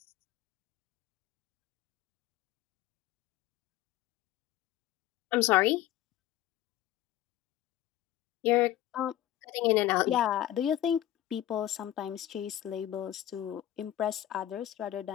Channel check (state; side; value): quieter; right; 13.0 dB